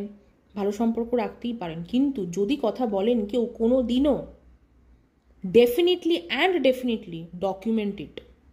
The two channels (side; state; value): both; identical; correlation 1.00